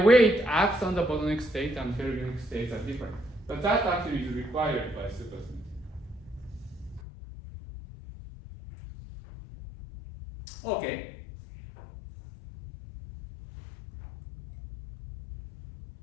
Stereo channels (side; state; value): right; drops out; at 7.0 s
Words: it acts on the bosonic state and fermionic states are different. But that actually is required by supersymmetry. Okay.